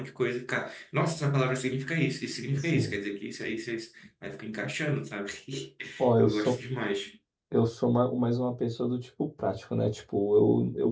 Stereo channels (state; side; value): identical; both; correlation 1.00